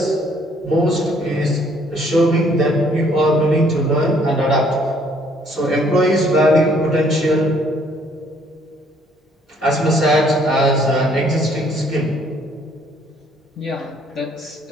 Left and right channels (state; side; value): normal; both; correlation 0.63